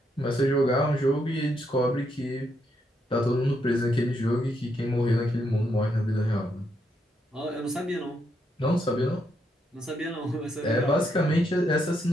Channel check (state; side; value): normal; both; correlation 0.78